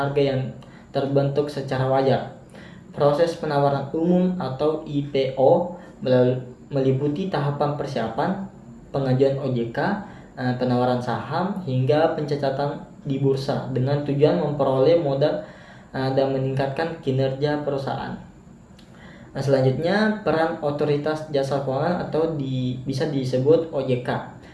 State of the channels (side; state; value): both; identical; correlation 1.00